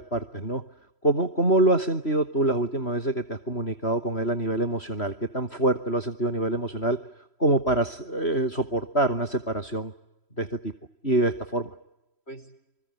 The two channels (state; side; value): late; right; 3.1 ms